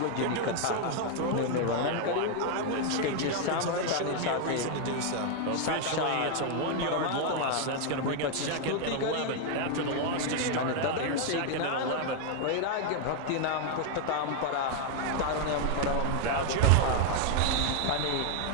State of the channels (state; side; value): different; both; correlation 0.00